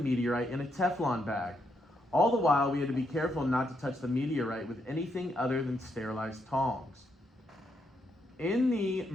in a Teflon bag. All the while, we had to be careful not to touch the meteorite with anything other than sterilized tongs. In the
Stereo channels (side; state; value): both; normal; correlation 0.78